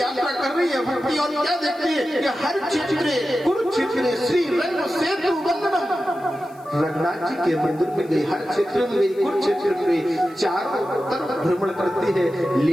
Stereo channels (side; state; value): left; noise; hiss, 29 dB below the sound